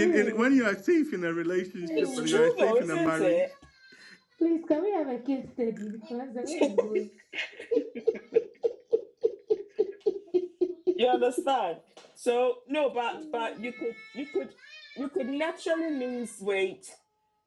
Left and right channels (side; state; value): both; identical; correlation 1.00